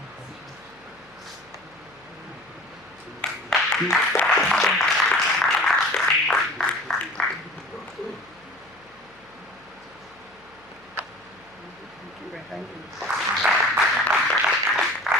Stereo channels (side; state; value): left; noise; hum, 30 dB below the sound